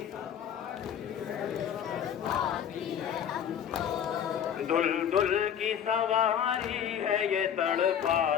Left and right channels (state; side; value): quieter; right; 8.9 dB